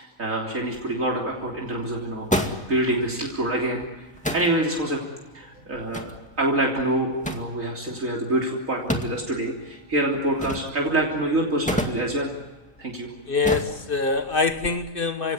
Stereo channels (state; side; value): normal; both; correlation 0.01